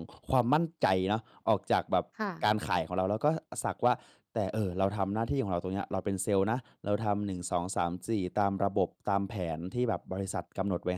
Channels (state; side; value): identical; both; correlation 1.00